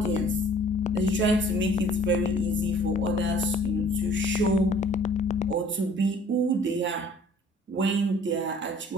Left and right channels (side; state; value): both; normal; correlation 0.53